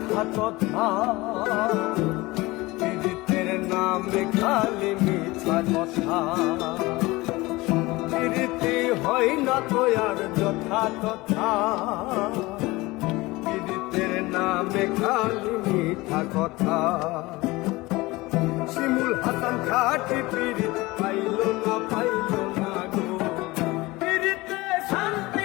কথা, প্রীতের নামে খালি মিথ্যা কথা। প্রীতি হয় না তো আর যথা তথা, প্রীতের নামে খালি মিথ্যা কথা। শিমুল হাসান খাটি প্রীতি পাইল না গো, প্রীতে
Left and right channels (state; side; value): quieter; right; 21.2 dB